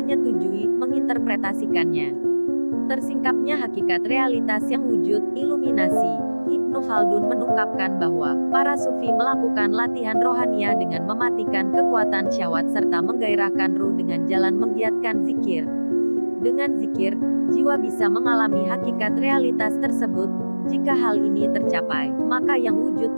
menginterpretasikannya. Tersingkapnya hakikat realitas yang wujud, iluminasi. Ibnu Khaldun mengungkapkan bahwa para sufi melakukan latihan rohania dengan mematikan kekuatan syahwat serta menggairahkan ruh dengan jalan menggiatkan zikir. Dengan zikir, jiwa bisa mengalami hakikat realitas tersebut. Jika hal ini tercapai, maka yang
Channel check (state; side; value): inverted; both; correlation -1.00